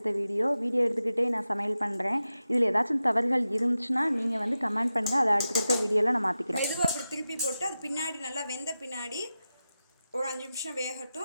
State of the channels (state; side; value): inverted; both; correlation -0.92